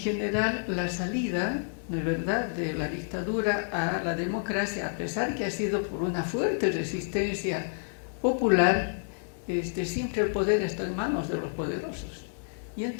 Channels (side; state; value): right; silent; digital silence